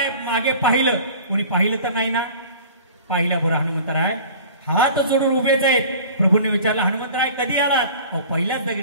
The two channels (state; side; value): inverted; both; correlation -0.43